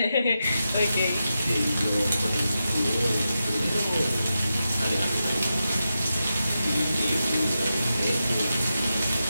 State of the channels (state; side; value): inverted; both; correlation -0.89